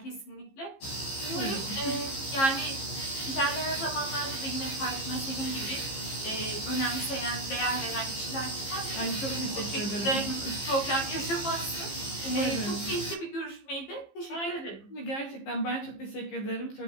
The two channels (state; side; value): late; right; 15 ms